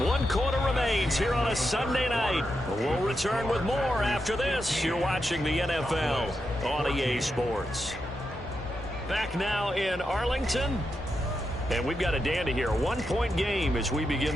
1 quarter remains here on a Sunday night. We'll return with more after this. You're watching the NFL on EA Sports. Back now in Arlington. And we've got a dandy here. 1-point game as we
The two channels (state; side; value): normal; both; correlation 0.86